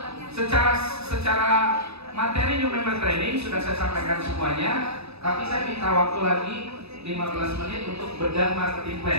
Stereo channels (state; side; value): late; left; 0.79 ms